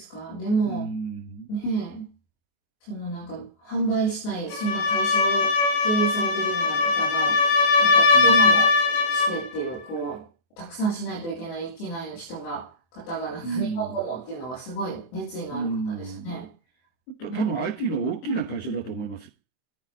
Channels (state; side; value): late; right; 24 ms